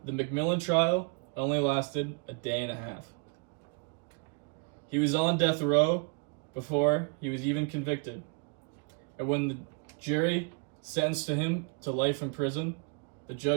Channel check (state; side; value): quieter; left; 35.7 dB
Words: The McMillan trial only lasted a day and a half. He was on death row before he was even convicted. And when the jury sentenced him to life in prison, the